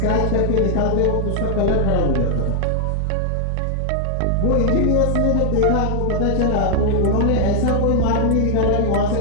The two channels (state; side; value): different; both; correlation 0.00